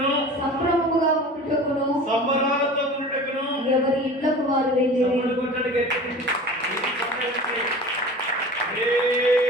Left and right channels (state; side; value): normal; both; correlation 0.38